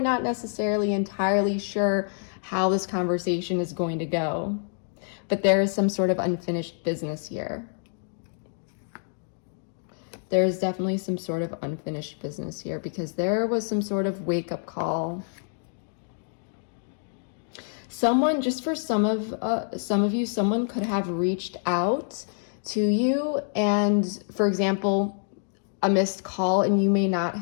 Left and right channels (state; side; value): silent; right; digital silence